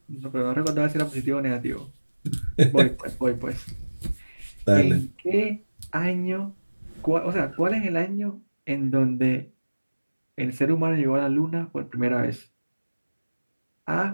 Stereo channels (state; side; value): inverted; both; correlation -1.00